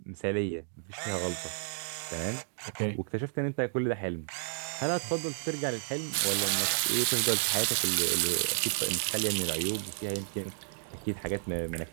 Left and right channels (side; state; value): left; silent; digital silence